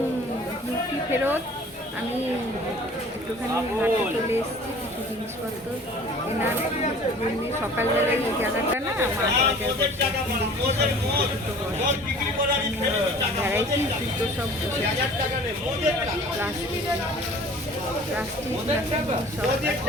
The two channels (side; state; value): both; normal; correlation 0.47